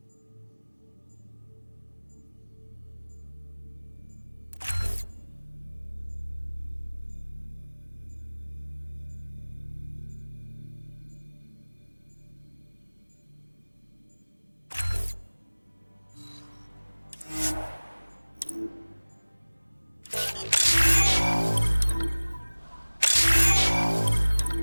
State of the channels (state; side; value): inverted; both; correlation -1.00